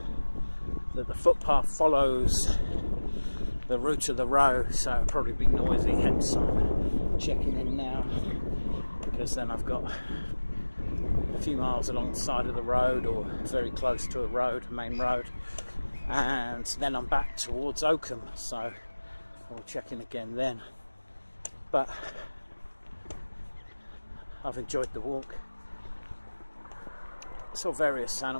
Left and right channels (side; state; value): both; inverted; correlation -1.00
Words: that the footpath follows the route of the road, so it'll probably be noisy, hence I'm checking in now, because then I've got a few miles along the side of the road or very close to a main road, and then I'm back towards Oakham, so I'll check in again then. But I've enjoyed the walk. Saw various